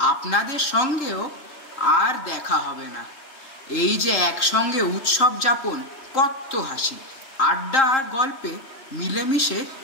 আপনাদের সঙ্গেও আর দেখা হবে না। এই যে একসঙ্গে উৎসব যাপন, কত হাসি, আড্ডা আর গল্পে মিলেমিশে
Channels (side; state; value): right; late; 3.8 ms